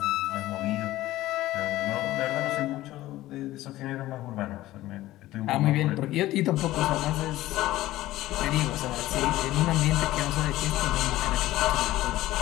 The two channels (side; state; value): right; quieter; 16.1 dB